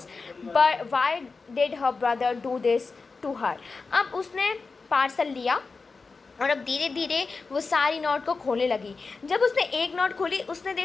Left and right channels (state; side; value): quieter; right; 4.3 dB